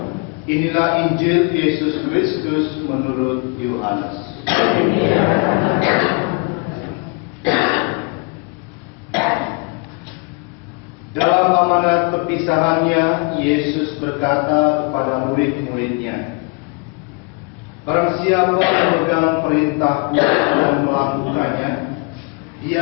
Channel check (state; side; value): quieter; right; 31.2 dB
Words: Inilah Injil Yesus Kristus menurut Yohanes. Dalam amanat perpisahannya, Yesus berkata kepada murid-muridnya, "Barang siapa memegang perintahku dan melakukannya,